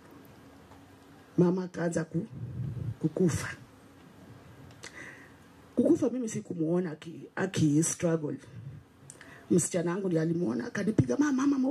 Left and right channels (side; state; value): both; identical; correlation 1.00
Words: mama kaanza kukufa. Kukufa mimi sikumuona aki struggle. Msichana wangu ndiye alimuona, akanipiga, mama